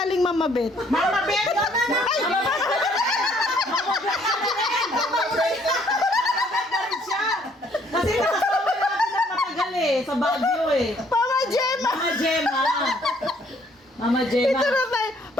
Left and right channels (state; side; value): normal; both; correlation 0.64